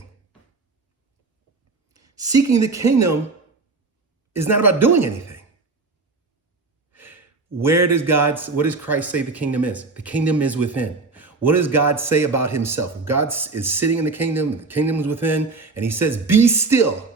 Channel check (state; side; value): quieter; left; 3.9 dB